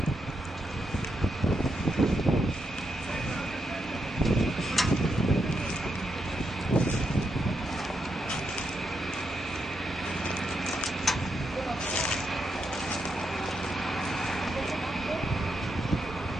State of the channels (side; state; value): both; normal; correlation 0.83